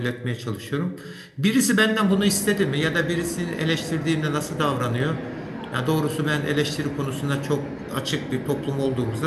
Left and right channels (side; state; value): both; identical; correlation 1.00